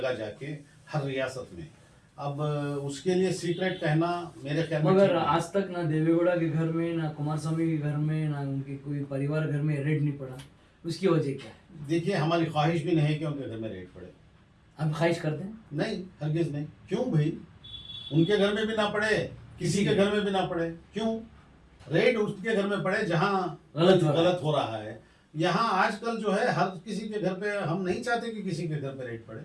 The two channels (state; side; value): identical; both; correlation 1.00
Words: जाके, हर रियासत में। अब उसके लिए सीक्रेट कहना मेरे ख्याल में, मगर आज तक ना देवेगौड़ा के घर में, ना कुमार स्वामी के घर में, ना उनके कोई परिवार घर में रेड नहीं पड़ा, उसकी वजह क्या है? देखिए, हमारी ख्वाहिश भी नहीं है कि उनके घर में रेड पड़े। आप ख्वाहिश करते हैं? नहीं, हरगिज नहीं। क्यों भाई? उनके घर में भी ना पड़े, किसी के घर में भी ना पड़े। क्यों रेड उसके घर में पड़े जहाँ गलत हो रहा है? यहाँ आजकल जो है हर किसी के घर पे, हम नहीं चाहते कि किसी के घर पे रेड पड़े।